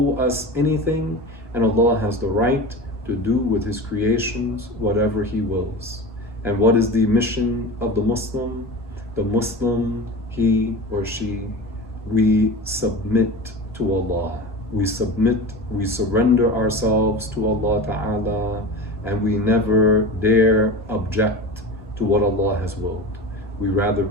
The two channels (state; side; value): normal; both; correlation 0.30